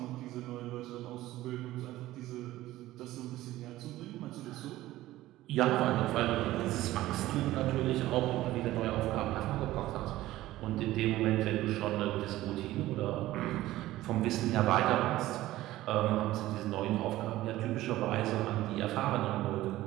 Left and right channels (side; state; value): left; quieter; 16.0 dB